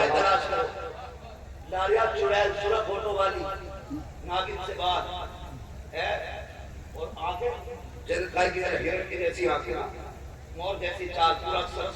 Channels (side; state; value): both; identical; correlation 1.00